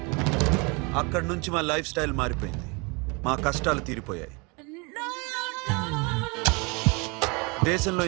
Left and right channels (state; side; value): quieter; left; 29.5 dB